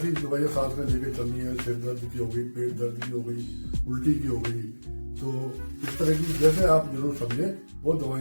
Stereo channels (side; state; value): both; inverted; correlation -1.00